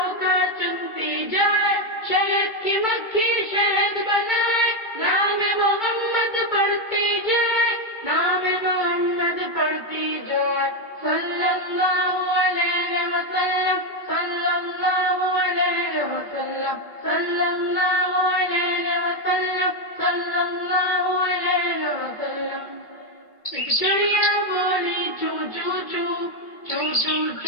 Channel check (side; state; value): right; late; 2.2 ms